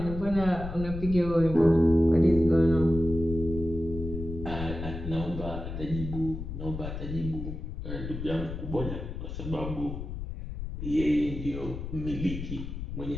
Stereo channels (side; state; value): left; noise; rumble, 7 dB below the sound